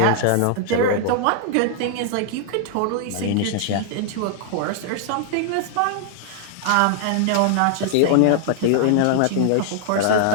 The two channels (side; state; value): both; different; correlation 0.00